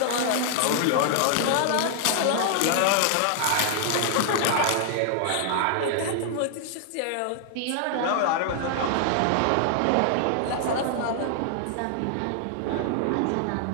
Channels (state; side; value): different; both; correlation -0.01